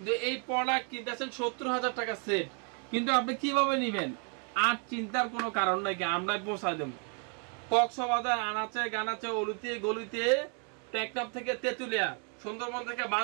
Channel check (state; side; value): quieter; left; 37.6 dB